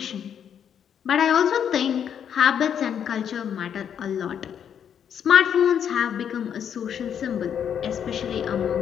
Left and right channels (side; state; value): right; quieter; 8.5 dB